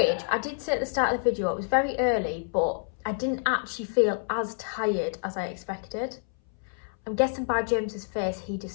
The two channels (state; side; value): silent; right; 59 dB below the other